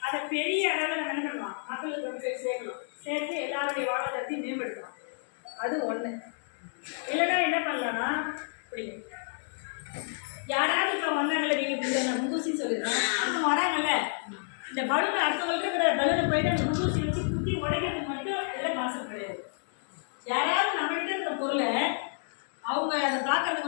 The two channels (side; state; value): right; silent; 58 dB below the other